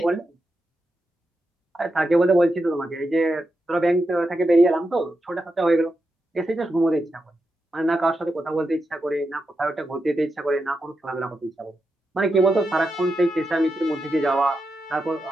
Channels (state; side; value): normal; both; correlation 0.87